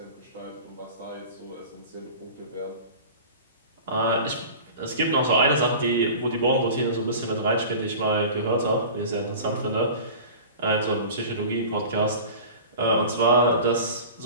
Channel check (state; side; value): inverted; both; correlation -0.37